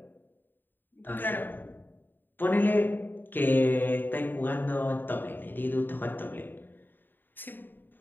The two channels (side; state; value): right; late; 0.093 ms